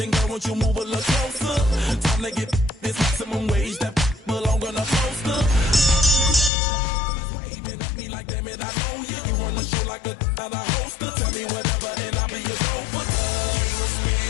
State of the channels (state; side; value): drops out; right; at 6.5 s